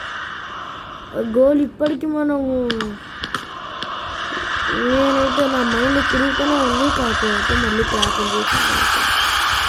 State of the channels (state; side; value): identical; both; correlation 1.00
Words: గోల్ ఇప్పటికీ మనము నేనైతే నా మైండ్ తిరుగుతూనే ఉంది. కాకపోతే మళ్ళీ క్యాప్టెన్ చేసి